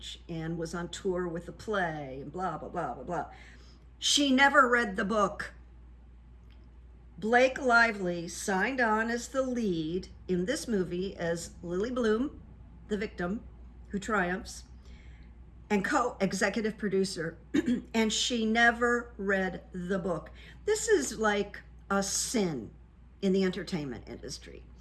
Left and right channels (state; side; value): identical; both; correlation 1.00